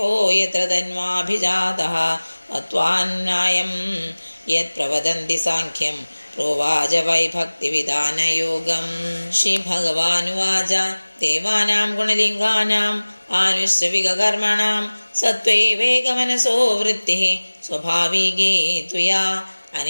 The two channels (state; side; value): inverted; both; correlation -1.00